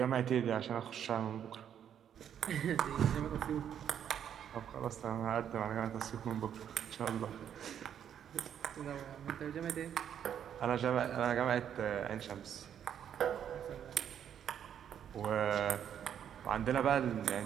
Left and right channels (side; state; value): left; quieter; 9.2 dB